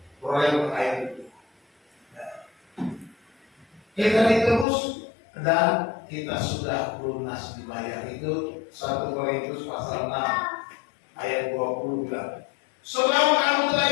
oleh ayat itu. Kita ditebus dan kita sudah lunas dibayar. Itu 1 Korintus pasal 6 ayat 20 bilang, sebab kamu telah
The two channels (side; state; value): right; drops out; at 4.7 s